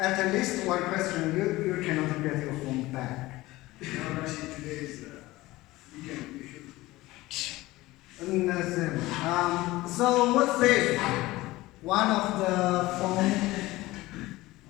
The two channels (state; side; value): quieter; right; 18.8 dB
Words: least one question, you cannot get your phone back. Today's Understand. So what's this? One of the phone.